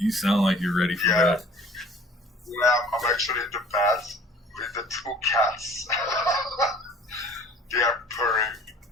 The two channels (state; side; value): normal; both; correlation 0.50